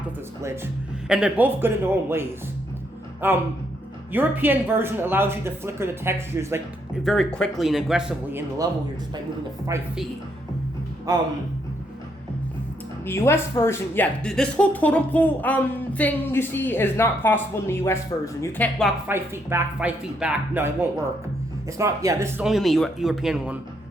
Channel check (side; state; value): both; normal; correlation 0.74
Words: with this glitch, and they're both good in their own ways. European version allows you to flicker the textures like very quickly and aggressively in the level here just by moving it 5 feet. The US version, yeah, this whole totem pole thing you see is not possible in the US version. You can't walk 5 feet back, 5 feet back. No, it won't work. It's not, yeah, this is only in the European one,